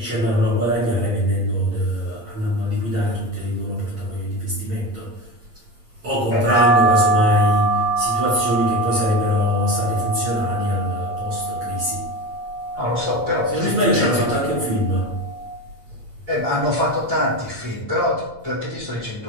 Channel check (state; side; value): late; left; 8.6 ms